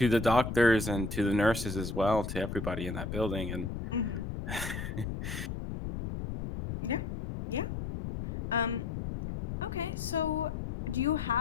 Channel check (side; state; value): left; noise; rumble, 5 dB below the sound